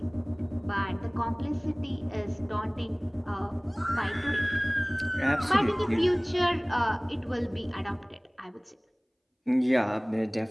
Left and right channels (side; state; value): both; identical; correlation 1.00